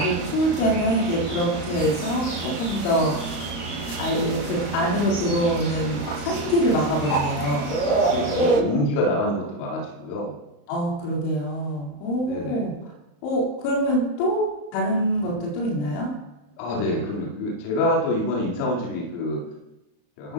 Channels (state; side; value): late; right; 35 ms